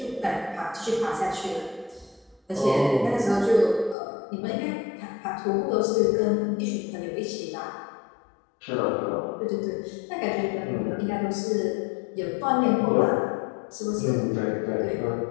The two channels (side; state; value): right; drops out; at 4.0 s